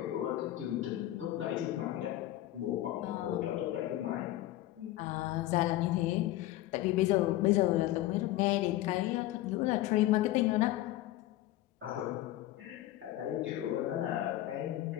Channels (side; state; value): right; quieter; 15.2 dB